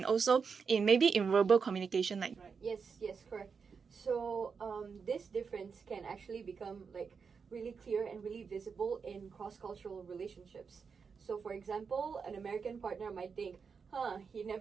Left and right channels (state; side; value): quieter; left; 5.7 dB